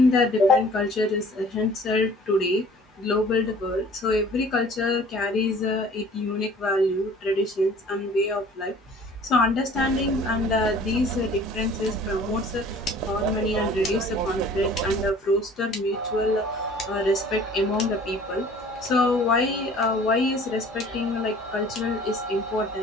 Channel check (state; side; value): normal; both; correlation 0.50